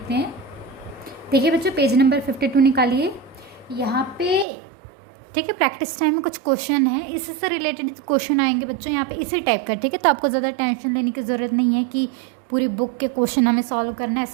हैं। देखिए बच्चों, पेज नंबर 52 निकालिए यहाँ पे। ठीक है, प्रैक्टिस टाइम में कुछ क्वेश्चन है, इसी से रिलेटेड क्वेश्चन आएंगे बच्चों यहाँ पे इसी टाइप का। ठीक है, तो आपको ज़्यादा टेंशन लेने की ज़रूरत नहीं है कि पूरी बुक के क्वेश्चन हमें सॉल्व करना है,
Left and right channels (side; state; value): left; drops out; at 4.5 s